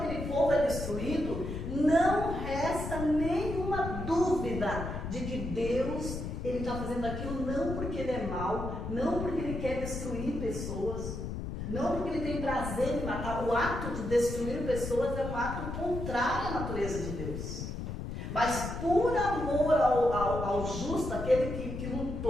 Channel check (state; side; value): noise; left; rumble, 6 dB below the sound